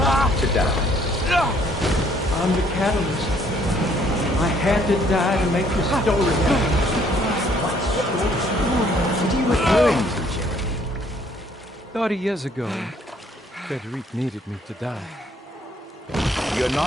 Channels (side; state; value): both; normal; correlation 0.63